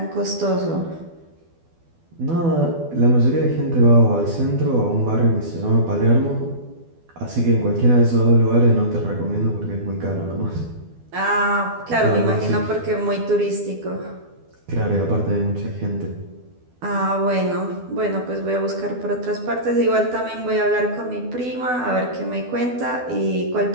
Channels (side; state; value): left; late; 12 ms